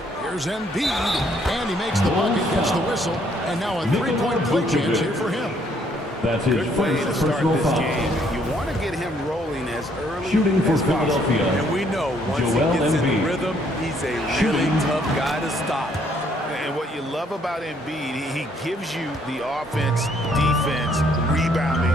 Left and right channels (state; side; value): normal; both; correlation 0.67